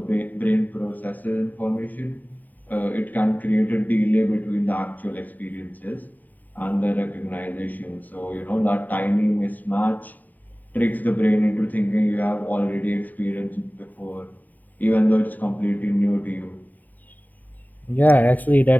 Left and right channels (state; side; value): late; right; 0.085 ms